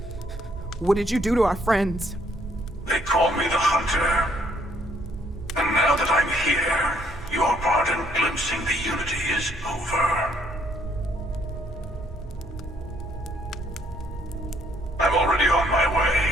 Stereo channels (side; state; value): both; normal; correlation 0.67